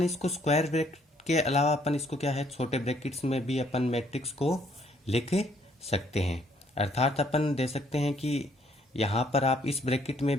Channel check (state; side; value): normal; both; correlation 0.66